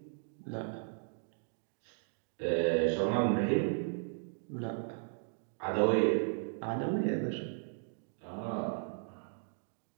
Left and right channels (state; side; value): silent; left; digital silence